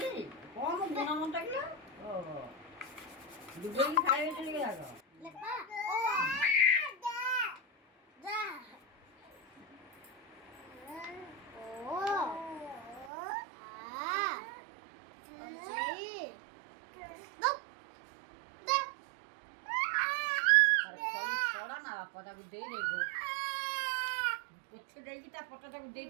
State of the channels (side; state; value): left; drops out; at 13.1 s